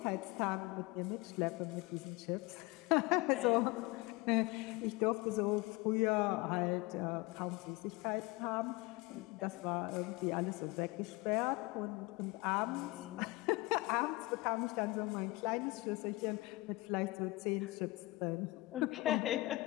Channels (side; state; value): right; quieter; 21.9 dB